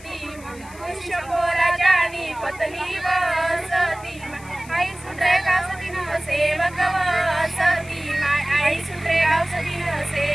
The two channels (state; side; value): noise; left; hiss, 21 dB below the sound